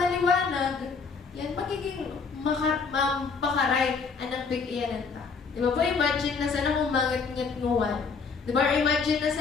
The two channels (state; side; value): quieter; right; 5.1 dB